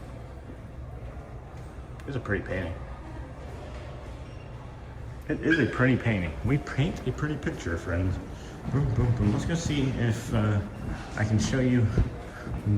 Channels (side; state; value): both; identical; correlation 1.00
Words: It's a pretty painting. It is a pretty painting. We paint a pretty picture, friends. Boom, boom, boom. Let's go see if I can show you